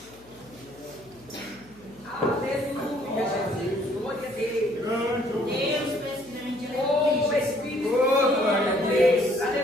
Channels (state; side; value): noise; left; hum, 26 dB below the sound